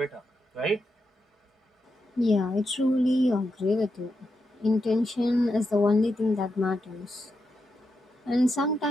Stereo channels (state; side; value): normal; both; correlation 0.85